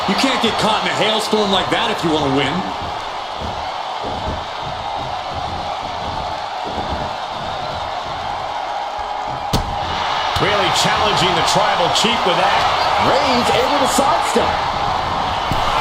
You can't get caught in a hailstorm like that if you want to win. Really challenging the tribal chief with that. Reigns able to sidestep.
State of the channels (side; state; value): both; identical; correlation 1.00